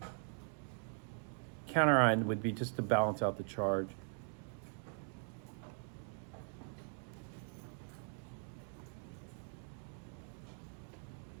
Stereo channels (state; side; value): silent; left; 50 dB below the other